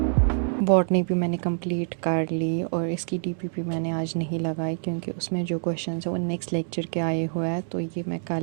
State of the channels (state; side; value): silent; left; digital silence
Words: Botany भी मैंने कंप्लीट कर ली और इसकी डीपीपी मैंने आज नहीं लगाई क्योंकि उसमें जो क्वेश्चंस है वो नेक्स्ट लेक्चर के आए हुए हैं, तो ये मैं